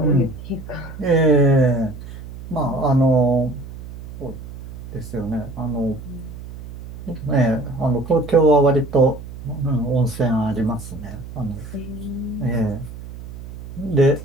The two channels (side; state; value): right; noise; hum, 13 dB below the sound